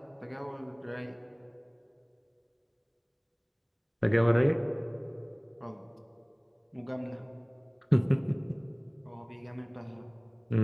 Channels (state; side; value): identical; both; correlation 1.00